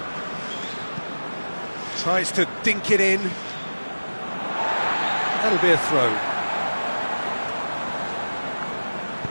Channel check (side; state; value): both; inverted; correlation -1.00